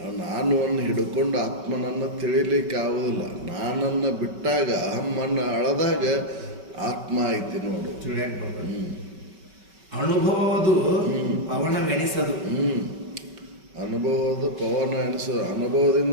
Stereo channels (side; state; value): left; late; 5.3 ms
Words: ನಾನು ಅನ್ನು ಹಿಡ್ಕೊಂಡು ಆತ್ಮನನ್ನು ತಿಳಿಲಿಕ್ಕೆ ಆಗೋದಿಲ್ಲ. ನಾನನ್ನು ಬಿಟ್ಟಾಗ ಅಹಮ್ಮನ್ನು ಅಳದಾಗ ಆತ್ಮ ಐತಿ ನೋಡು. ಅನುಭವದು ಪವನವೆನಿಸದು. ಅನುಭವದ ಪವನ ಎನಿಸೋದು.